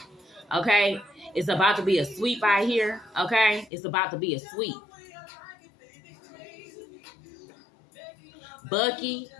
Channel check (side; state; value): right; drops out; at 3.7 s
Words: Okay, it's about to be a sweep out here. Okay, it's about to be a sweep. Bucky.